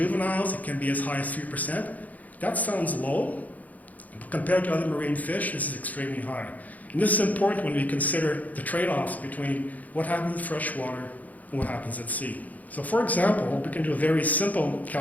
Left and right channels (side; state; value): right; late; 0.077 ms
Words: it can be as high as 3%. That sounds low. Compared to other marine fish, this is extremely high. And this is important when we consider the trade-offs between what happens in freshwater and what happens at sea. So for example, we can do a very simple